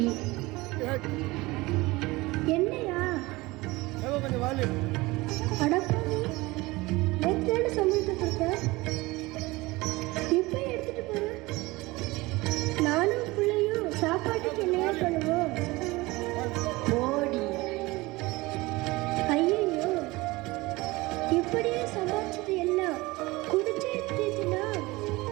என்னையா கொஞ்சம் வாழு. அடப்பாவி, நேற்று சமைத்து கொடுத்த இப்போ எடுத்துட்டு போறேன். நானும் பிள்ளையும் சாப்பாட்டுக்கு என்னையா பண்ணுவோம்? ஓடி. ஐயோ, இப்படியே சமாளிச்சது எல்லாம் குடிச்சே தீட்டுனா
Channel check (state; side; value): quieter; left; 21.6 dB